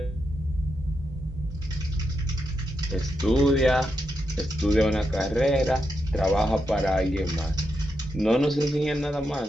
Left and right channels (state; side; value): normal; both; correlation 0.85